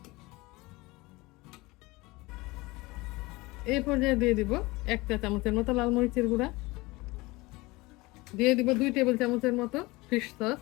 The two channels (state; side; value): quieter; right; 22.2 dB